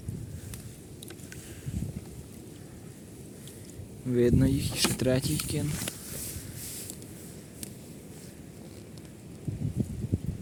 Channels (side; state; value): both; identical; correlation 1.00